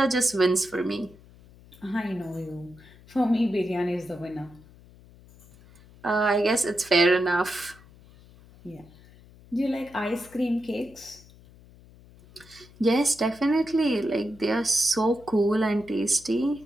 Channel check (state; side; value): noise; left; hum, 24 dB below the sound